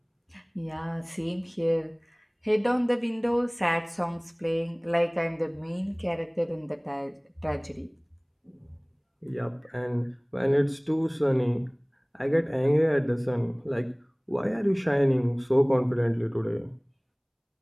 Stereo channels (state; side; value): identical; both; correlation 1.00